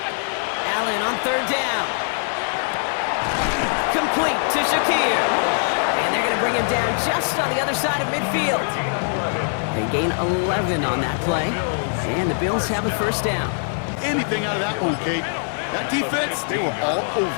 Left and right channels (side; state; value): right; silent; digital silence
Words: Allen on third down. Complete to Shakir. And they're going to bring him down just on the other side of midfield. They gain 11 on that play. And the Bills have a first down. Anything out of that one, Kate. That defense, they were all